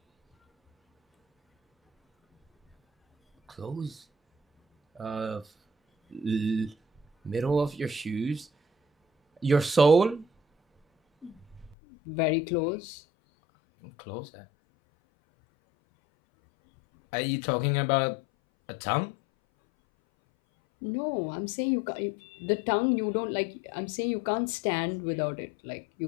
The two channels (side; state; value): right; drops out; at 11.8 s